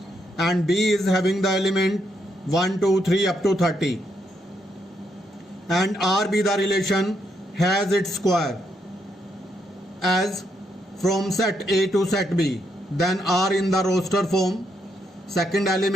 and B is having the element 1 2 3 up to 30, and R be the relation has its square as from set A to set B, then R in the roster form, second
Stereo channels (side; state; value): both; normal; correlation 0.78